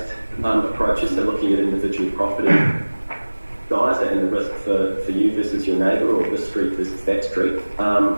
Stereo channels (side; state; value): both; inverted; correlation -1.00